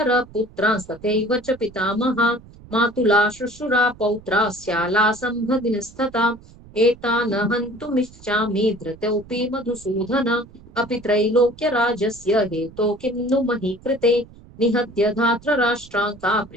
पुत्रांस्तथैव च पितामहा मातुला श्वशुरा पौत्रा स्याला सम्भगिनस्तथा एतान् हन्तुमिच्छामि धृतोऽपि मधुसूदन अपि त्रैलोक्यराजस्य हेतो किं नु मही कृते निहत्य धार्तराष्ट्रान् का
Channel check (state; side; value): noise; right; rumble, 22 dB below the sound